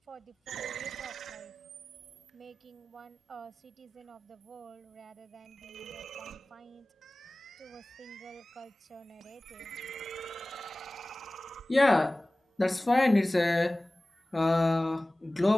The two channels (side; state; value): both; normal; correlation 0.98